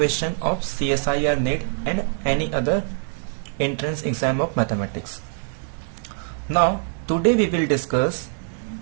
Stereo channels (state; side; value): silent; left; digital silence